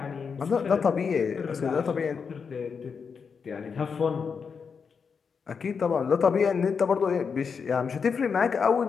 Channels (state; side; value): quieter; right; 5.9 dB